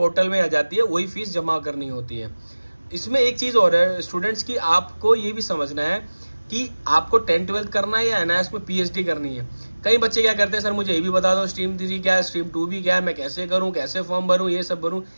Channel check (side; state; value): both; inverted; correlation -1.00